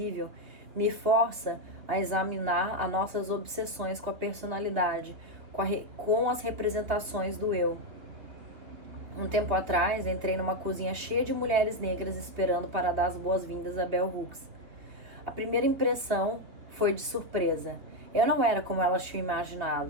me força a examinar as nossas obsessões com a personalidade, com as representações do eu. Um tempo atrás, entrei numa cozinha cheia de mulheres negras esperando para dar as boas-vindas a Bell Hooks. A primeira impressão foi de surpresa. Eu não era como elas tinham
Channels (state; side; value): late; left; 3.5 ms